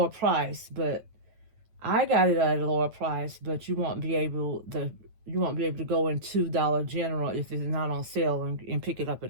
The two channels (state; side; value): late; left; 8.9 ms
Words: price. But I got it at a lower price, but you won't be able to go into Dollar General if it's not on sale and pick it up